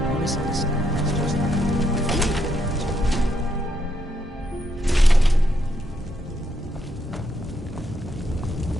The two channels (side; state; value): both; normal; correlation 0.78